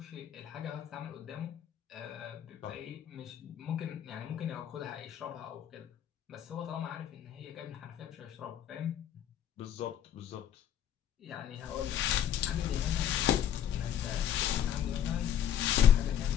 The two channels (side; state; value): right; quieter; 9.9 dB